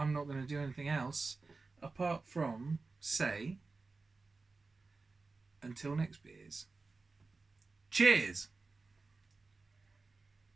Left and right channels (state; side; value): quieter; left; 3.9 dB